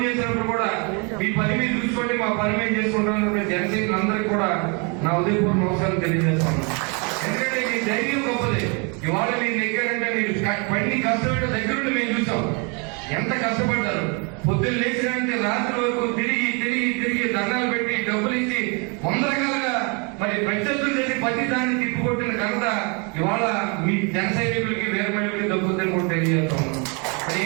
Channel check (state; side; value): quieter; left; 33.2 dB